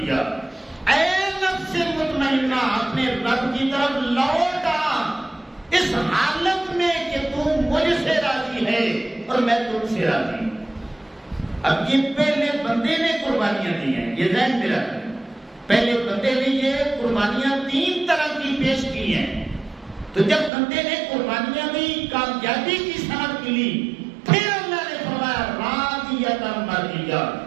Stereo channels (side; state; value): left; drops out; at 20.5 s